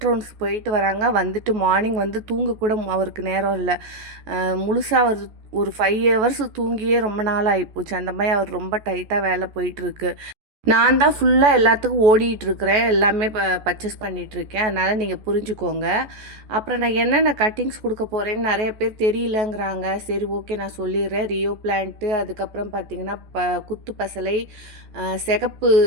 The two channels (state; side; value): late; left; 14 ms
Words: ரவுண்ட்ஸ் போயிட்டு வராங்க, வந்துட்டு மார்னிங் வந்து தூங்க கூட அவருக்கு நேரம் இல்லை. முழுசாக அவர் ஒரு 5 ஹவர்ஸ் தூங்கியே ரொம்ப நாள் ஆகிப்போச்சு. அந்த மாதிரி அவர் ரொம்ப டைட்டாக வேலை போயிட்டுருக்கு. நான் தான் ஃபுல்லாக எல்லாத்துக்கும் ஓடிட்டுருக்கிறேன், எல்லாமே பர்ச்சேஸ் பண்ணிகிட்ருக்கேன். அதனால் நீங்கள் புரிஞ்சுக்கோங்க. அப்புறம் நான் என்னென்ன கட்டிங்ஸ் கொடுக்க போகிறேன்னு நிறைய பேர் தெரியலங்கிறாங்க. சரி, ஓகே, நான் சொல்லிடுறேன். ரியோ பிளான்ட்டு, அதுக்கப்புறம் பார்த்திங்கன்னா குத்து பசலை, சிகப்பு